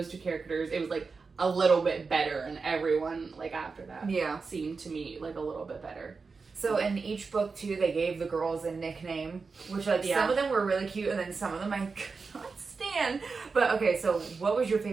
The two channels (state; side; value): quieter; left; 4.6 dB